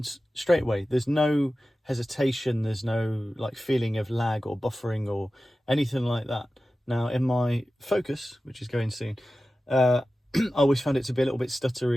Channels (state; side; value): normal; both; correlation 0.95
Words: straight away. There's no hesitation. There's no like feeling of lag or buffering or anything like that. Now, in my Focus, which is going soon, I always found it to be a little bit